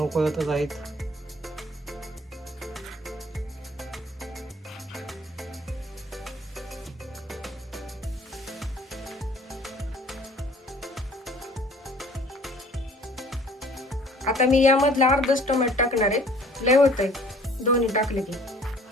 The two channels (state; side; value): normal; both; correlation 0.52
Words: आहेत. आता मी यामधला अर्धाच टोमॅटो टाकणार आहे. लय होतंय दोन्ही टाकले की.